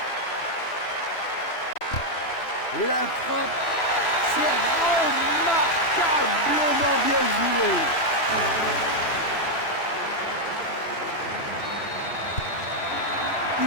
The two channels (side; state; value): right; late; 3.0 ms